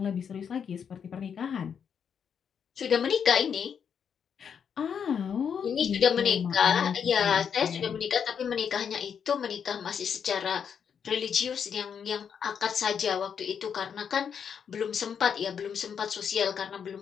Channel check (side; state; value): right; quieter; 7.4 dB